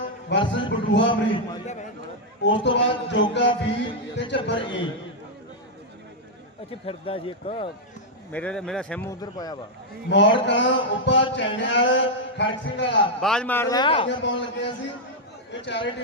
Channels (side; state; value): both; normal; correlation -0.03